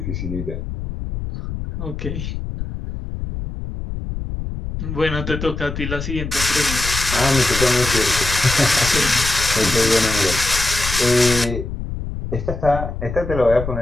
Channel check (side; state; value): left; noise; rumble, 6 dB below the sound